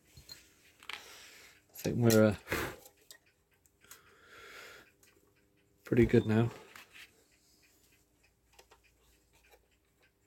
think we're pretty good now.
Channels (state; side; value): identical; both; correlation 1.00